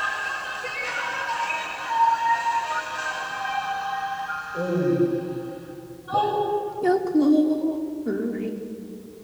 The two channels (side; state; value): both; identical; correlation 1.00